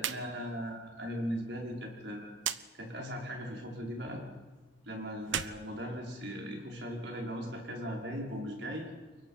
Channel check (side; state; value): both; normal; correlation 0.44